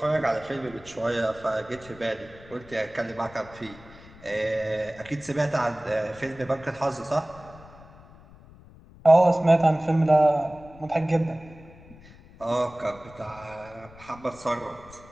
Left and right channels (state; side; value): noise; left; rumble, 21 dB below the sound